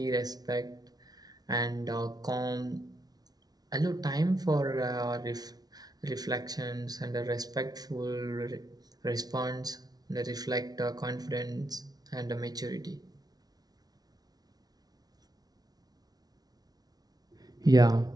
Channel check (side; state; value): left; late; 0.19 ms